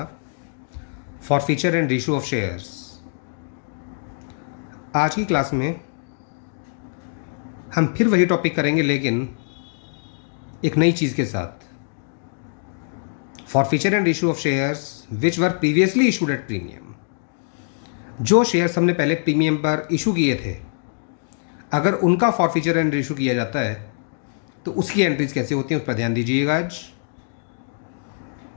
forfeiture and ratio of shares. आज की क्लास में हम फिर वही टॉपिक करेंगे, लेकिन एक नई चीज़ के साथ। Forfeiture and ratio of shares which were previously issued at premium. जो शेयर्स हमने पहले प्रीमियम पर इशू किए थे, अगर उनका फॉरफीचर एंड रेशियो किया जाता है तो उसकी एंट्रीज कैसे होती हैं, उस पर ध्यान दीजिएगा आज।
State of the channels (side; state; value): right; silent; digital silence